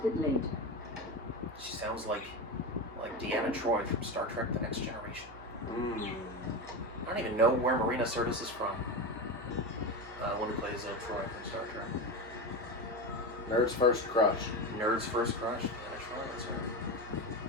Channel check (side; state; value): right; noise; hum, 18 dB below the sound